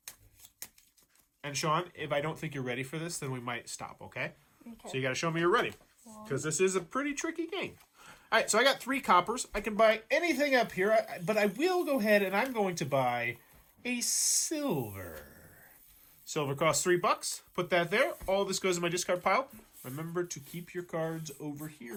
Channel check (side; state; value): both; identical; correlation 1.00